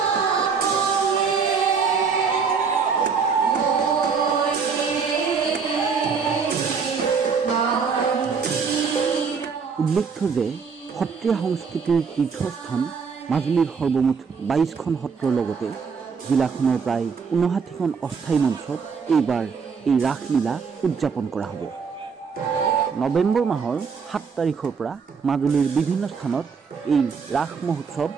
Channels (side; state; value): left; quieter; 5.7 dB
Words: উল্লেখ্য যে সত্ৰীয়া সংস্কৃতিৰ তীৰ্থস্থান মাজুলীৰ সৰ্বমুঠ ২২খন সত্ৰৰ লগতে জিলাখনৰ প্ৰায় ৫৯খন অস্থায়ী মঞ্চত এইবাৰ এই ৰাসলীলা উদযাপন কৰা হ'ব। নৱেম্বৰ মাহৰ ৭ তাৰিখৰ পৰা মাজুলীৰ বিভিন্ন স্থানত এই ৰাস মহোৎসৱ